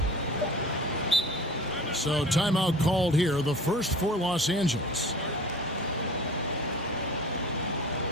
So timeout called here, the first for Los Angeles.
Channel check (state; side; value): normal; both; correlation 0.41